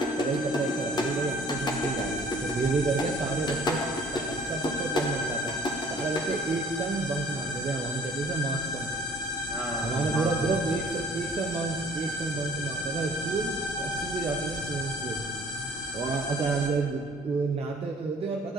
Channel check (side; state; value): both; normal; correlation 0.54